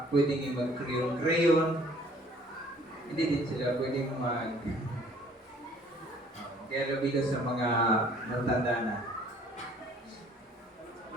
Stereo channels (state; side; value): normal; both; correlation 0.56